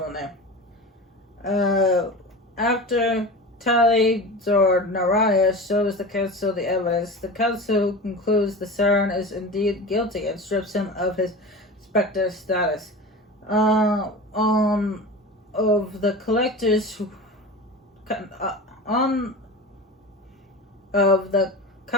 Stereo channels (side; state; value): both; normal; correlation 0.31